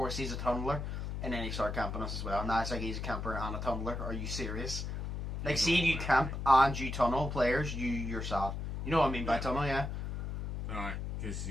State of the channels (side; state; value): left; noise; hum, 4 dB below the sound